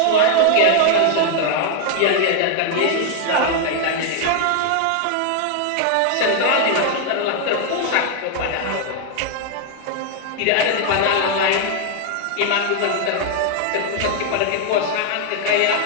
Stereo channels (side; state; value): both; different; correlation 0.00